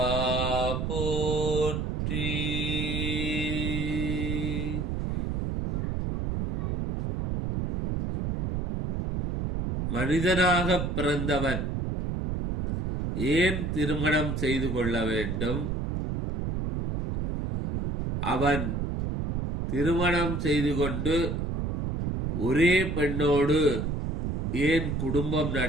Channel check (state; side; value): noise; right; rumble, 2 dB below the sound